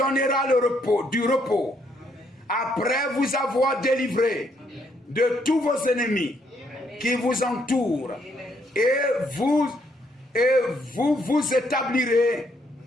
du repos après vous avoir délivré de tous vos ennemis qui vous entourent, et vous établirez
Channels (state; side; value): normal; both; correlation 0.72